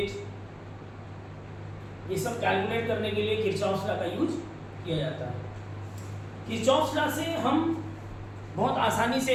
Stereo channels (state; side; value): identical; both; correlation 1.00